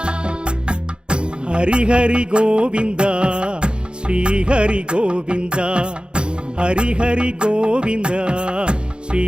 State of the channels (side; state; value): left; late; 0.052 ms